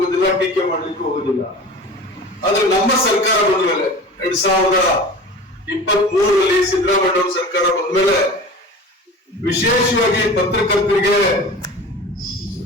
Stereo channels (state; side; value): normal; both; correlation 0.37